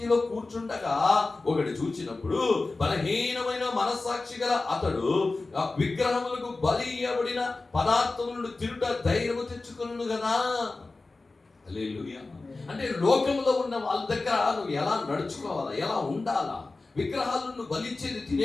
కూర్చుండగా ఒకటి చూచినప్పుడు బలహీనమైన మనస్సాక్షి గల అతడు విగ్రహములకు బలి ఇయ్యబడిన పదార్థములను తిరుట ధైర్యము తెచ్చుకును కదా. హల్లెలూయా. అంటే లోకంలో ఉన్న వాళ్ళ దగ్గర నువ్వు ఎలా నడుచుకోవాలా, ఎలా ఉండాలా? విగ్రహాలను బలిచ్చేది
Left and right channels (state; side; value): quieter; right; 3.5 dB